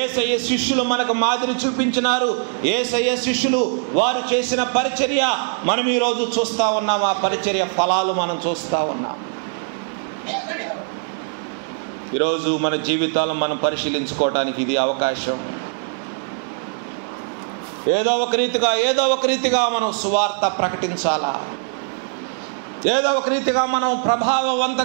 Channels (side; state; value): left; silent; 57 dB below the other